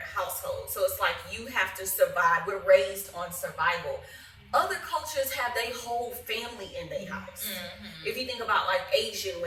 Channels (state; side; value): identical; both; correlation 1.00